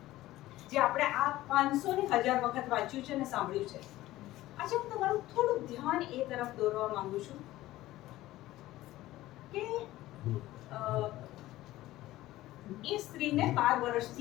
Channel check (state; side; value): quieter; right; 16.2 dB